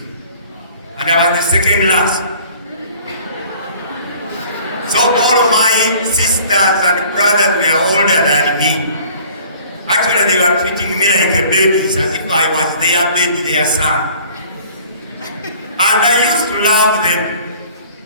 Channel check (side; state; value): both; inverted; correlation -0.51